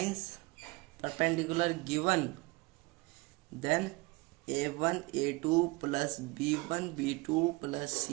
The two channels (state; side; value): quieter; left; 24.1 dB